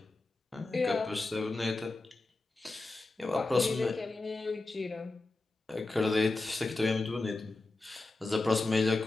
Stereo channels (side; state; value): right; quieter; 3.2 dB